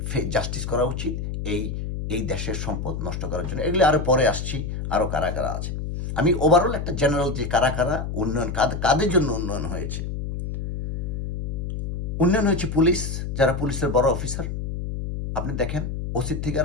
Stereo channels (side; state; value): left; noise; hum, 4 dB below the sound